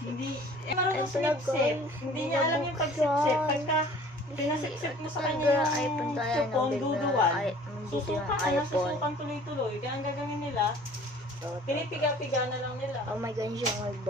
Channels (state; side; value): normal; both; correlation 0.50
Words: Hindi. Marunong sumipsip. Hindi niya alam yung pagsipsip. Pagka pinasipsip mo sa kanya yung supon, duduwal. Susukan tuloy-tuloy. Kaya ang gagawin nila, pinipiga-piga na lang nila. Oh my God, yung may